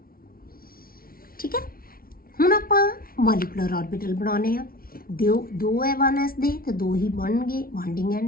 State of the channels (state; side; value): late; right; 0.43 ms